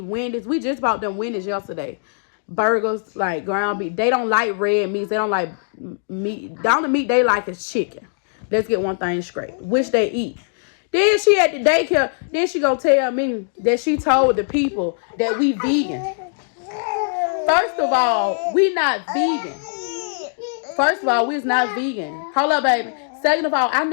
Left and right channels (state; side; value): silent; right; digital silence